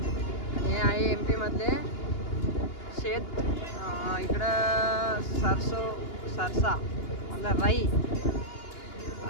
हे आहे MP मधले शेत इकडं सरसा मतलब राई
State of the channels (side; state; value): right; late; 2.8 ms